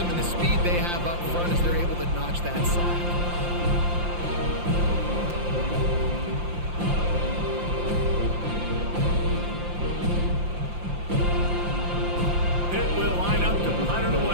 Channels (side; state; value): left; late; 5.7 ms